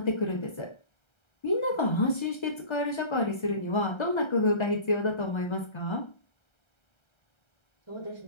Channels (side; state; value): right; late; 1.3 ms